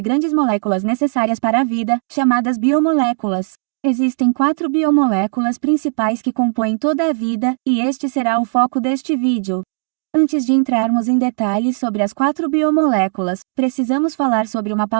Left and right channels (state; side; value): silent; left; digital silence